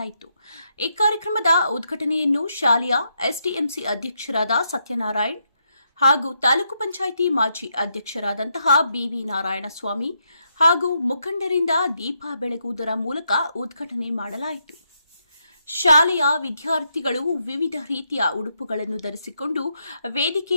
ಈ ಕಾರ್ಯಕ್ರಮದ ಉದ್ಘಾಟನೆಯನ್ನು ಶಾಲೆಯ ಎಸ್ಡಿಎಂಸಿ ಅಧ್ಯಕ್ಷರಾದ ಸತ್ಯನಾರಾಯಣ್ ಹಾಗೂ ತಾಲೂಕು ಪಂಚಾಯಿತಿ ಮಾಜಿ ಅಧ್ಯಕ್ಷರಾದಂತಹ ಬಿವಿ ನಾರಾಯಣಸ್ವಾಮಿ ಹಾಗೂ ಮುಖಂಡರಿಂದ ದೀಪ ಬೆಳಗುವುದರ ಮೂಲಕ ಉದ್ಘಾಟನೆ ಮಾಡಲಾಯಿತು. ಶಾಲೆಯ ವಿದ್ಯಾರ್ಥಿಗಳು ವಿವಿಧ ರೀತಿಯ ಉಡುಪುಗಳನ್ನು ಧರಿಸಿಕೊಂಡು ವೇದಿಕೆ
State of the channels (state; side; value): inverted; both; correlation -0.79